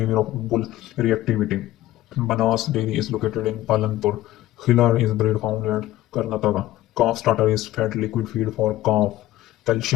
of bull reactivity. Banas dairy is located in Palanpur. Khillar is breed found at Karnataka. Calf starter is fed liquid feed for calf.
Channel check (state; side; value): quieter; right; 15.2 dB